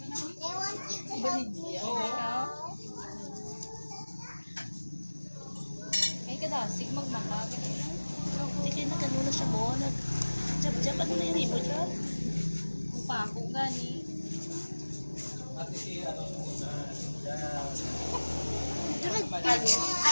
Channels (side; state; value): both; inverted; correlation -1.00